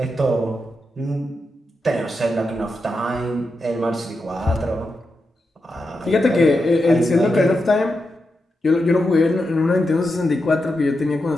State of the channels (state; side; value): normal; both; correlation 0.87